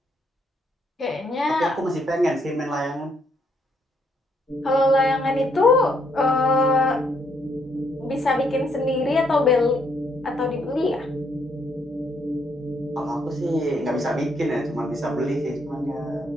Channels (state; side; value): normal; both; correlation 0.72